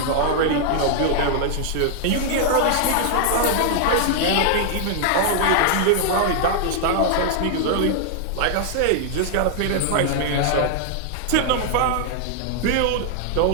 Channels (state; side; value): different; both; correlation 0.00